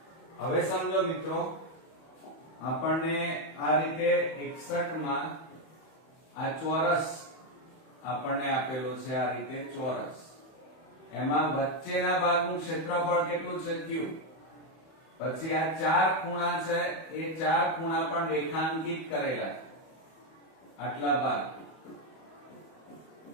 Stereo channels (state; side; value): late; right; 31 ms